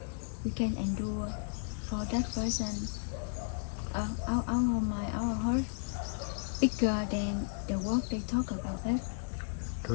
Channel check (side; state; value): right; silent; digital silence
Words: We can endure for that person. Our mind, our heart bigger than the work they talk about that. တိ